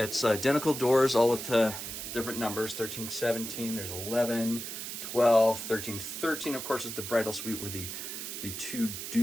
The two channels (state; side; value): noise; right; hiss, 7 dB below the sound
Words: identical doors, all with different numbers, 1317, there's 11, 12, 1313, of course, is the bridal suite where the two